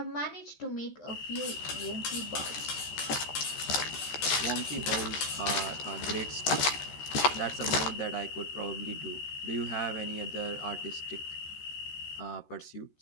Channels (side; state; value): right; late; 13 ms